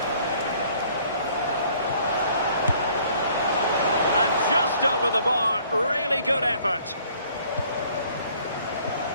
And just over the bar. Really good effort.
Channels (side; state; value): both; inverted; correlation -0.58